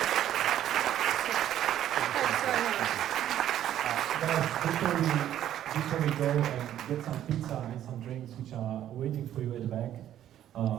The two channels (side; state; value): left; quieter; 11.5 dB